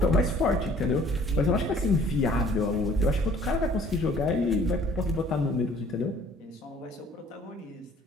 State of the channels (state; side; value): normal; both; correlation 0.55